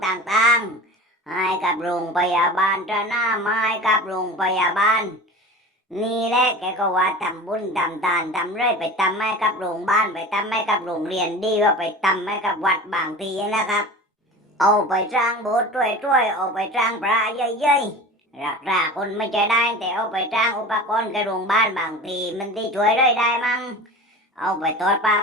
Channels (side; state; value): both; normal; correlation 0.35